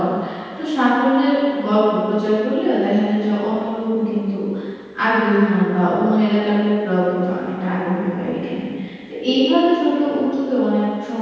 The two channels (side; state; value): both; identical; correlation 1.00